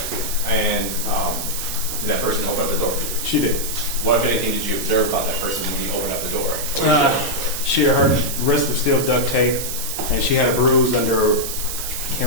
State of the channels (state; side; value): noise; right; hiss, 5 dB below the sound